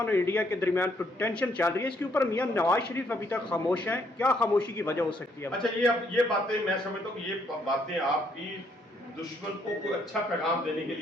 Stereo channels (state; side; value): normal; both; correlation 0.70